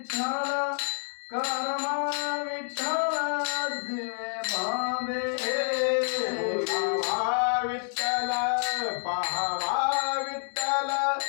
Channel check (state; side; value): silent; right; 58 dB below the other